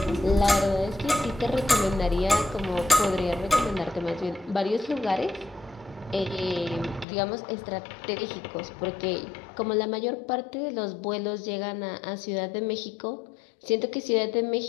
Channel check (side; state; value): right; drops out; at 7.1 s